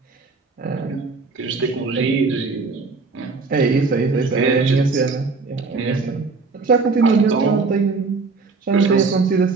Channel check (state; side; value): quieter; left; 4.2 dB